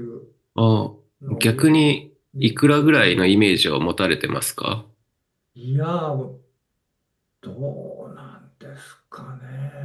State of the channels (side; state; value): both; identical; correlation 1.00